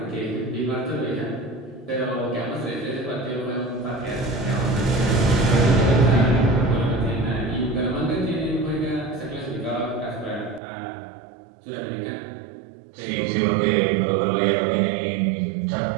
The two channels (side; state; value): left; drops out; at 10.6 s